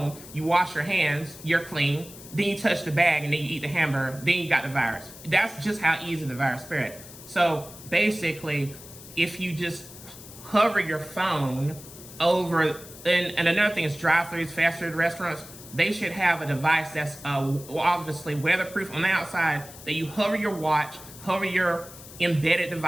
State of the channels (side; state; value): left; noise; hiss, 17 dB below the sound